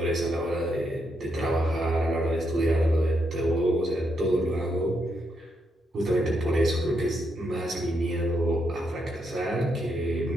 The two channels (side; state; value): both; normal; correlation 0.80